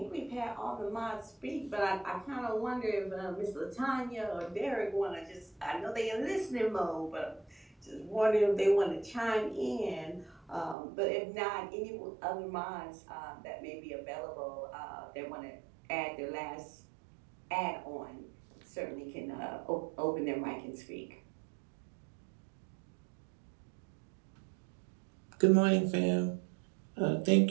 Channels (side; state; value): left; drops out; at 10.8 s